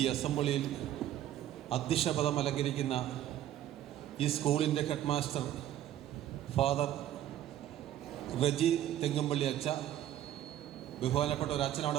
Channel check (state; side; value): quieter; left; 12.2 dB